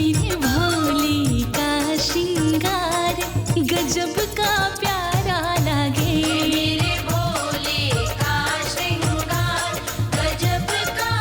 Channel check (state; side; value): identical; both; correlation 1.00